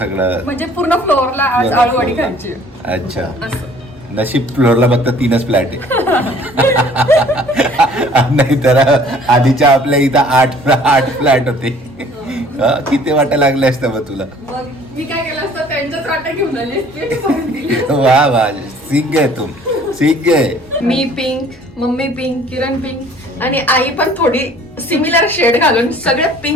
म्हणजे पूर्ण फ्लोअरला आज आळूवडी खायची. अच्छा, असं नशीब फ्लोअरला फक्त 3च फ्लॅट आहे. नाही तर आधीच्या आपल्या इथं 8 फ्लॅट होते. किती वाटा लागले असतं मग तुला? मग मी काय केलं असतं, त्यांच्याच वाटा घेऊन आली. वा वा, सीख गए तुम, सीख गए. मी पिंक, मम्मी पिंक, किरण पिंक आणि आई पण थोडी सिमिलर शेड घालून सगळे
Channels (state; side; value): normal; both; correlation 0.54